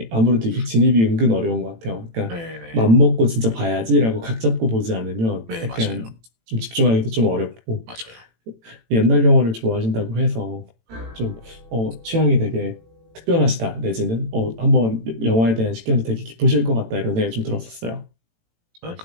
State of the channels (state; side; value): late; left; 18 ms